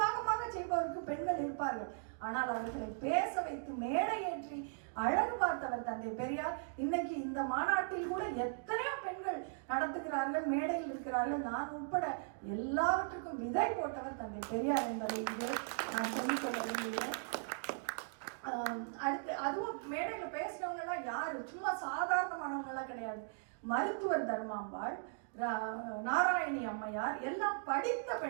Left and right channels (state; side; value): silent; left; digital silence